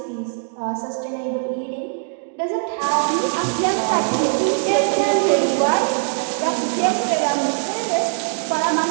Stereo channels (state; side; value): silent; left; 65 dB below the other